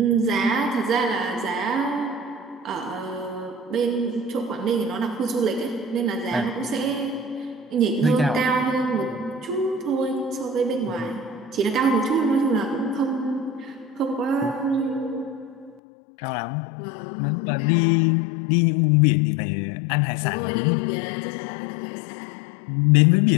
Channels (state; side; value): drops out; right; at 15.8 s